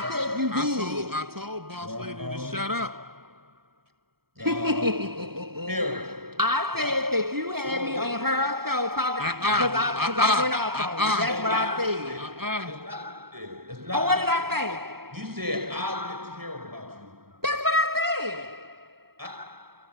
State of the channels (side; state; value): left; late; 0.95 ms